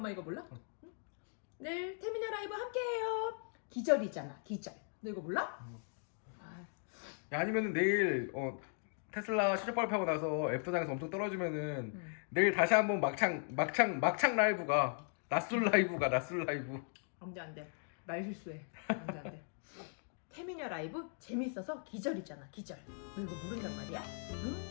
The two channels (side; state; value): right; silent; 52 dB below the other